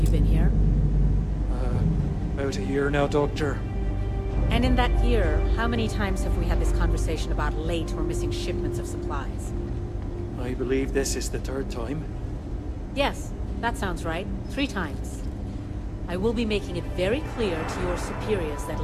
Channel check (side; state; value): both; identical; correlation 1.00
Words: you been here? About a year now, Doctor. And in that year, how many times have we had this conversation about late or missing shipments of supplies? I believe this is the third time. Yes, that sounds right. 3 times. I will be making it very clear to your superiors that